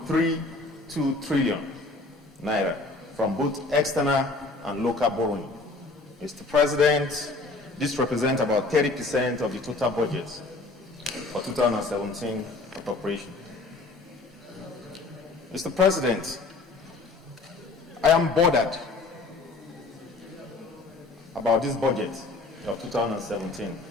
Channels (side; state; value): right; quieter; 3.5 dB